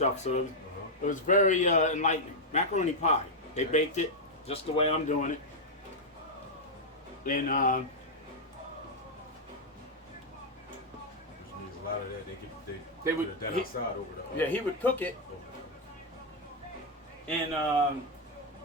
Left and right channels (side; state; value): both; normal; correlation -0.02